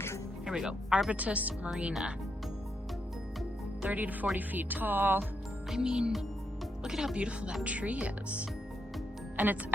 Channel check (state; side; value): normal; both; correlation 0.81